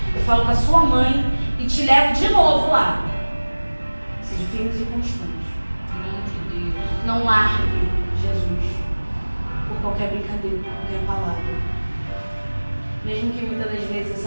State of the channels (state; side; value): inverted; both; correlation -1.00